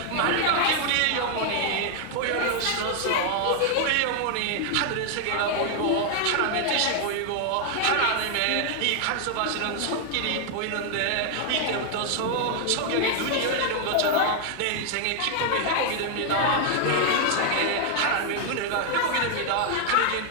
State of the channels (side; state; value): both; different; correlation 0.00